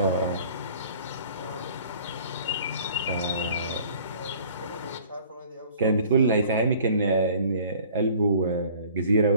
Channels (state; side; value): inverted; both; correlation -0.52